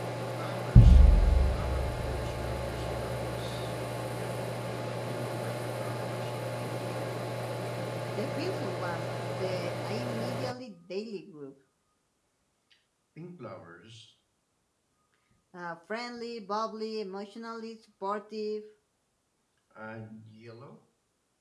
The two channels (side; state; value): both; identical; correlation 1.00